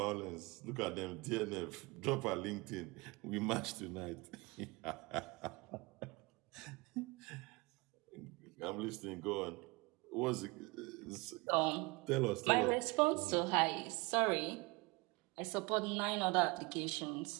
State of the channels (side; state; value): left; quieter; 25.7 dB